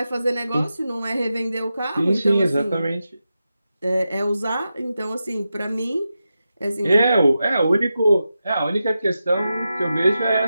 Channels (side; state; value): both; inverted; correlation -0.90